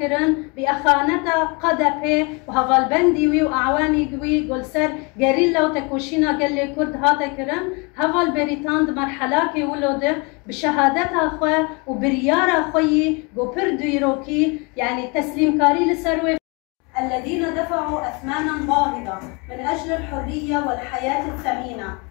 باخانتا قدبه وهوال بندي واعواني قوي قول سر غريلا وتكوشينا قال لي كرد هاتا كرن هوال بريتاند مرحلاكي ولود بشهادتها خو وبريارة خوي بوبر ديروكي يعني تسليم كاري لسروي الذين دفعوا أثمانا باهظة من أجل الحرية والحياة الثمينة.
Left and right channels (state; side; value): quieter; right; 29.7 dB